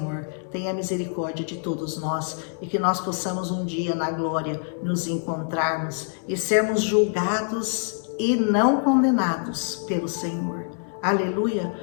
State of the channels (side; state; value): right; silent; 61 dB below the other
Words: tenha misericórdia de todos nós e que nós possamos um dia na glória nos encontrarmos e sermos julgados e não condenados pelo Senhor. Aleluia.